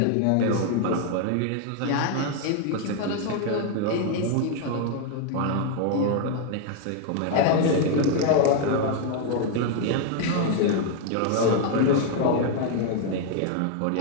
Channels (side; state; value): both; different; correlation 0.00